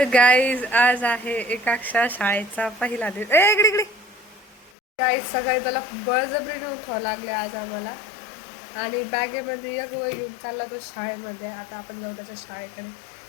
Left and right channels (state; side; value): drops out; right; at 4.7 s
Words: आज आहे एकाक्षा शाळेचा पहिला दिवस इकडे इकडे गाईज सकाळी त्याला बळजबरीने उठावं लागले आज आम्हाला आणि बॅगेमध्ये एक वय घेऊन चालला तो शाळेमध्ये. आता आपण जाऊ त्याच्या शाळेकडे.